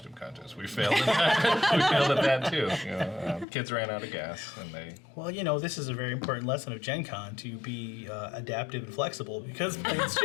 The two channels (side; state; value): right; drops out; at 3.5 s